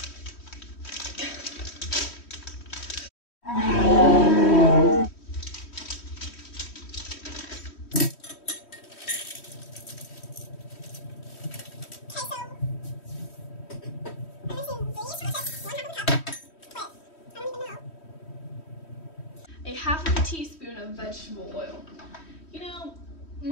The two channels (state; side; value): late; right; 3.1 ms